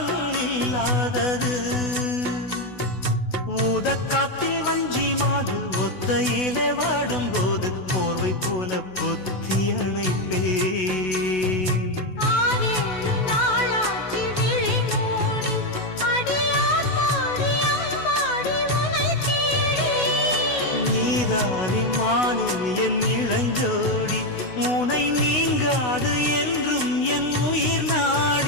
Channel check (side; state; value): right; late; 16 ms